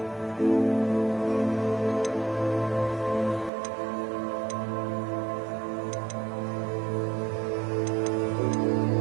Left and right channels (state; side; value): drops out; left; at 3.5 s